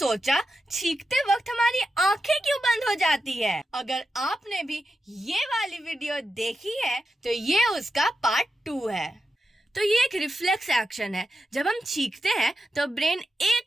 छींकते वक्त हमारी आंखें क्यों बंद हो जाती है? अगर आपने भी ये वाली वीडियो देखी है तो ये उसका पार्ट 2 है। तो ये एक रिफ्लेक्स एक्शन है। जब हम छींकते हैं तो ब्रेन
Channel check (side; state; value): both; normal; correlation 0.89